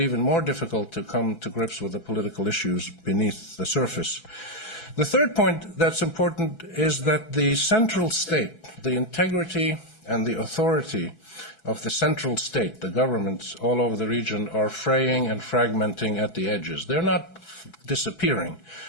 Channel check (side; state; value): right; late; 6.0 ms